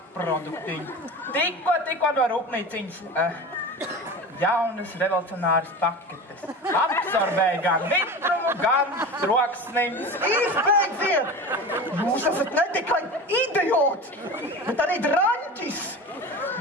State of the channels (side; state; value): both; normal; correlation 0.31